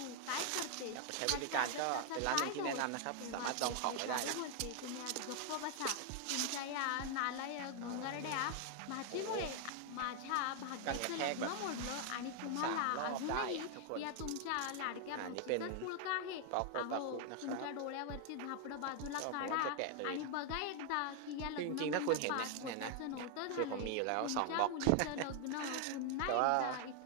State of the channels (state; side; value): different; both; correlation 0.00